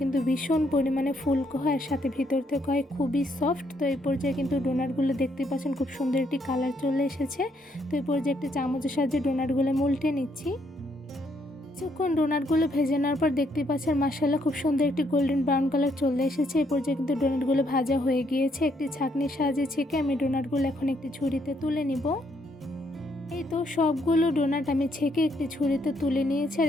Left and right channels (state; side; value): normal; both; correlation 0.73